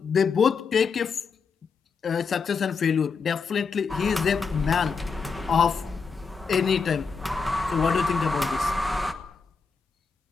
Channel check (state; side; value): quieter; right; 5.2 dB